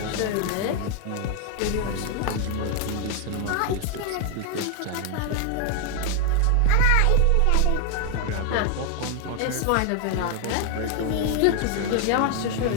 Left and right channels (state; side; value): different; both; correlation 0.01